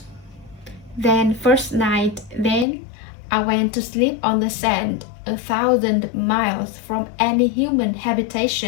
I went to sleep on the sand, 1,000 miles from any human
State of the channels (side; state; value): right; drops out; at 2.7 s